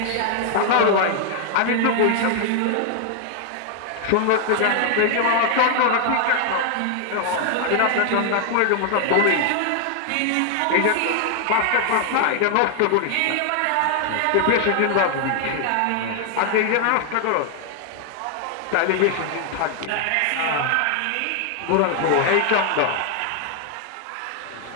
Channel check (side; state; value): both; different; correlation 0.00